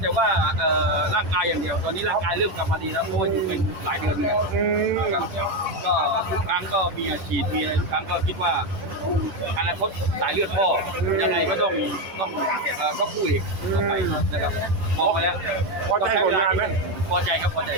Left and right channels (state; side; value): late; left; 10 ms